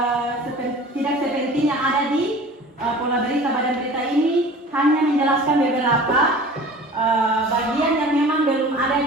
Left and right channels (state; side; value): normal; both; correlation 0.42